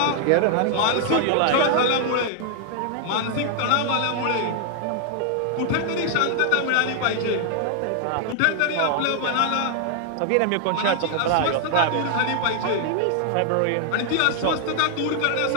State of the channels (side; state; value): both; different; correlation 0.00